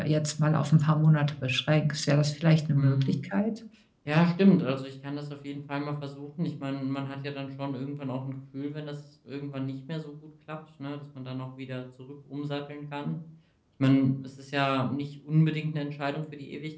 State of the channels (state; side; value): identical; both; correlation 1.00